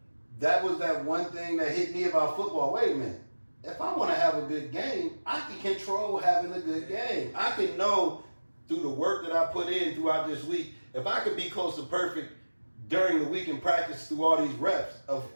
that was that one thing that hit me about football. Wait a minute. If I want to have a good game, I can control having a good game. I can know through the work that I put in throughout this week, if I could be close to perfect during the week and practice through all these reps, of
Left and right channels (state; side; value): inverted; both; correlation -1.00